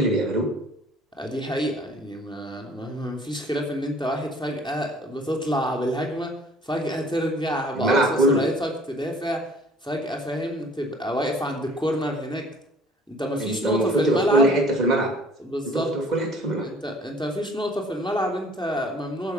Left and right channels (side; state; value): both; normal; correlation 0.52